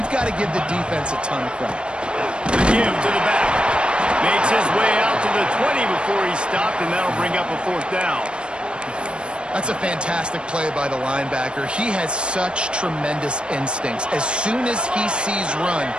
got to give the defense a ton of credit. The give to the back. Makes his way out to the 20 before he stopped, and that'll bring up a 4th down. That's a fantastic play by the linebacker. He has such tremendous instincts. As soon as he sees run,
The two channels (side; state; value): left; late; 0.055 ms